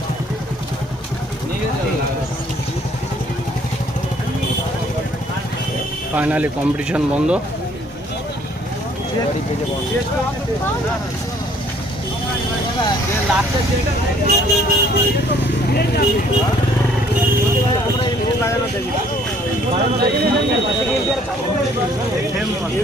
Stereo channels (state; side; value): normal; both; correlation 0.61